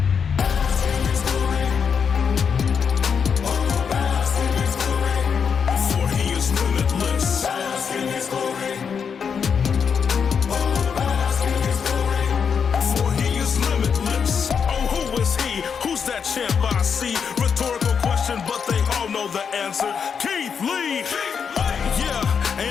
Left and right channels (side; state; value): right; quieter; 6.6 dB